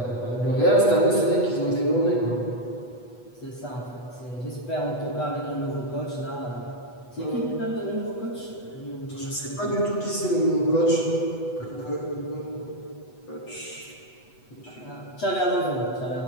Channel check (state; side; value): late; right; 8.2 ms